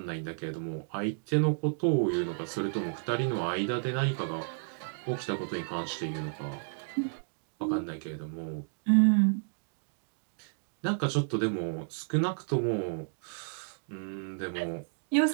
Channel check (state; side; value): silent; left; digital silence